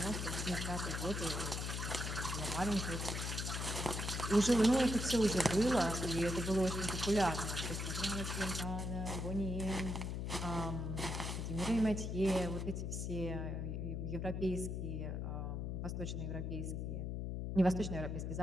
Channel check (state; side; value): noise; left; hum, 2 dB below the sound